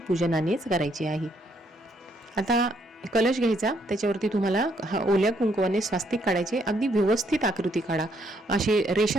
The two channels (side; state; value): both; normal; correlation 0.71